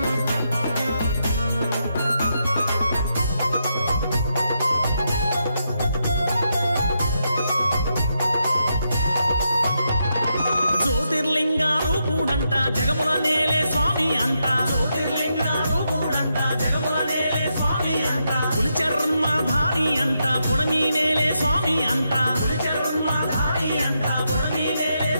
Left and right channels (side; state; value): both; inverted; correlation -0.82